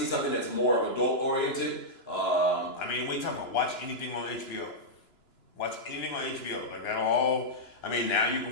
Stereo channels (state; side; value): late; right; 2.9 ms